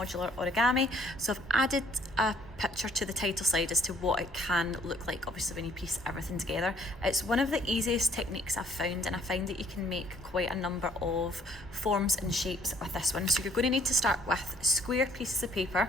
origami. So I've added a picture to the title slide as to what it can look like, obviously when you piece everything together. It's one of the easiest techniques I've found, and I find that you can make quite a number of forms and shapes with this one. So you're going to need to start with square pieces of paper.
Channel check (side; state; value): both; normal; correlation 0.61